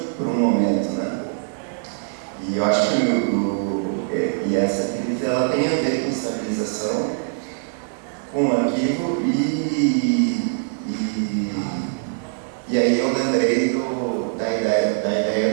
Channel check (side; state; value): left; silent; digital silence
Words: por um momento, né? E eu acho que essa crise ela tem a ver com estabilização, com o arquivo, e aí eu lembrei da ideia